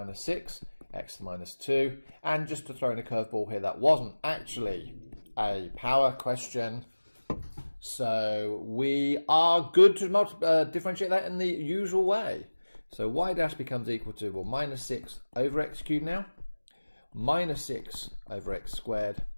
6, x to the minus 2, and just to throw in a curveball here, that wasn't actually a power question. So we are good to differentiate that in the usual way. So y dash becomes equal to, well, minus 6 over x cubed now, minus 6 over x squared,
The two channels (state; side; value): inverted; both; correlation -1.00